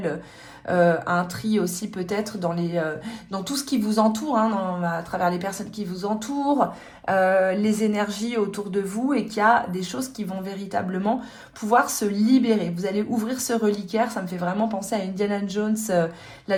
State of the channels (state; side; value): identical; both; correlation 1.00